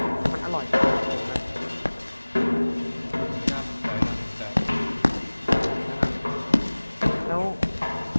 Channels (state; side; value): inverted; both; correlation -1.00